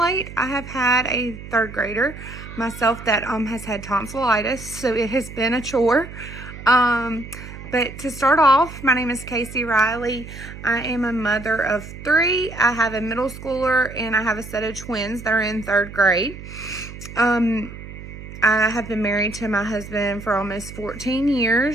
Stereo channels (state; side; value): noise; right; hum, 13 dB below the sound